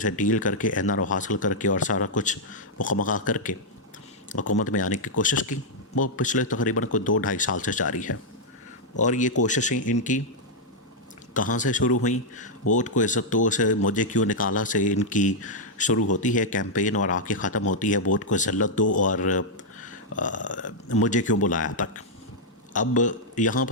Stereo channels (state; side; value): normal; both; correlation -0.04